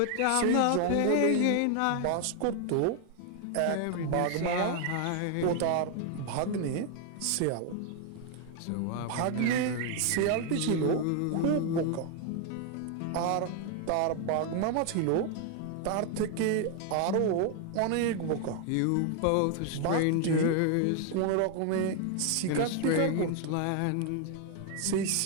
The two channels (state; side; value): different; both; correlation 0.00